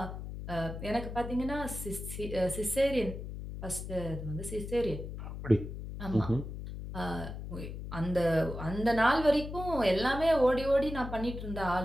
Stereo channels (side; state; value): left; noise; hum, 8 dB below the sound